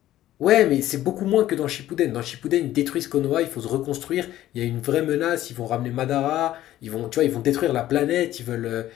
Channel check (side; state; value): right; quieter; 13.8 dB